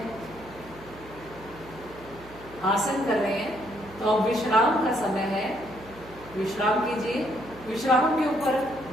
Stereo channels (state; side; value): noise; right; hum, 20 dB below the sound